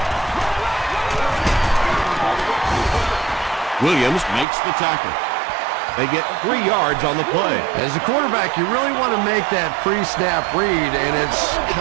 Williams makes the tackle. They get 3 yards on the play. As a quarterback, you really want to make that pre-snap read, and it's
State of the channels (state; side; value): drops out; left; at 4.5 s